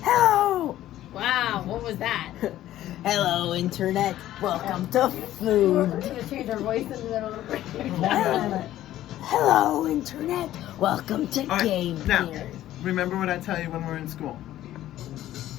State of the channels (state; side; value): quieter; right; 13.5 dB